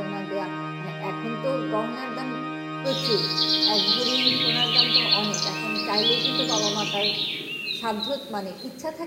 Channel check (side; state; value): both; identical; correlation 1.00